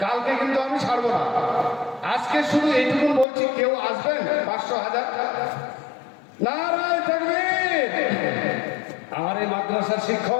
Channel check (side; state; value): right; drops out; at 3.2 s